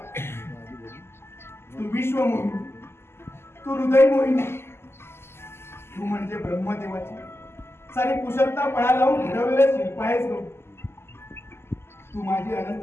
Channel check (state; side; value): late; right; 0.12 ms